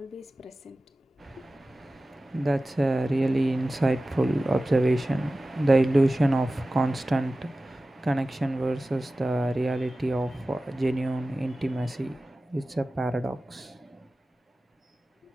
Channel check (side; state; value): both; normal; correlation 0.96